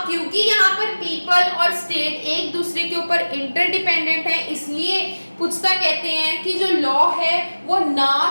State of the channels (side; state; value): both; inverted; correlation -1.00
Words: क्योंकि यहाँ पर पीपल और स्टेट एक दूसरे के ऊपर इंटरडिपेंडेंट है, इसलिए पुस्ता कहते हैं कि जो लॉ है वो